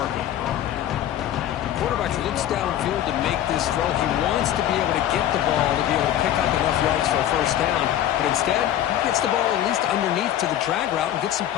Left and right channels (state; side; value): quieter; right; 11.8 dB